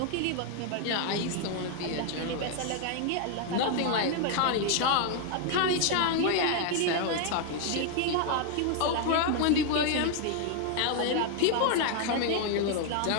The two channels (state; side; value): different; both; correlation 0.00